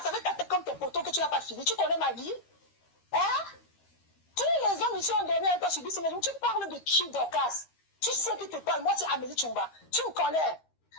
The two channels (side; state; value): right; late; 13 ms